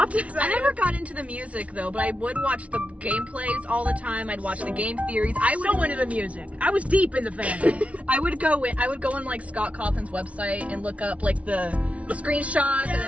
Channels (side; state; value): left; late; 0.065 ms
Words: never got into the music though, but I would watch the gameplays all the time. I'd watch the game theories. I was so into the music. I was deep in the fandom. I would go on like Scott Cawthon's website and look up like the screenshots and then